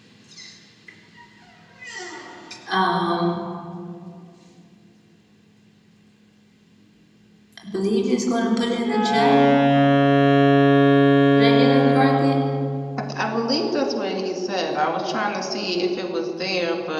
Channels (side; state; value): both; identical; correlation 1.00